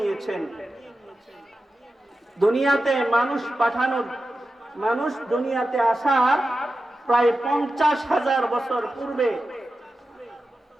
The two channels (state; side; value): normal; both; correlation 0.92